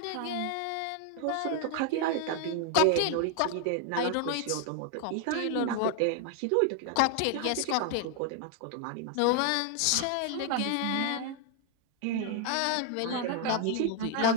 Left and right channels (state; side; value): different; both; correlation 0.00